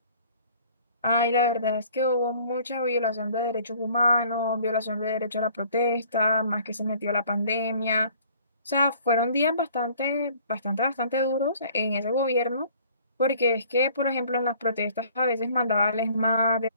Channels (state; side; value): inverted; both; correlation -0.54